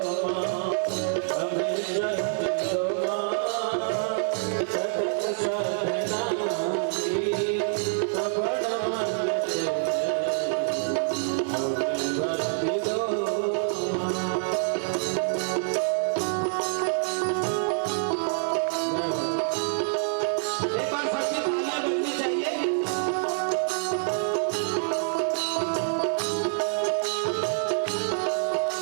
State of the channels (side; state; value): left; silent; 57 dB below the other